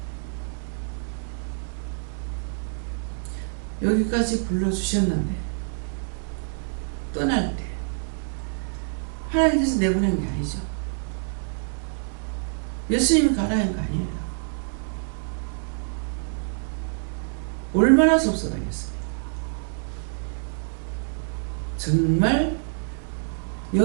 여기까지 불러주셨는데 떠날 때 하나님께서 내보낸 게 아니죠. 예수님이 가라는 거 아니에요. 얼마나 섭섭하겠어요. 정말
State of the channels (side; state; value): left; silent; 60 dB below the other